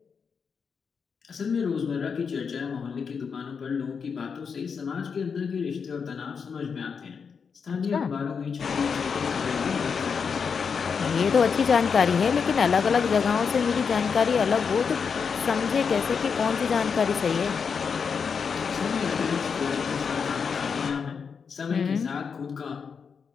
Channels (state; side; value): quieter; right; 6.0 dB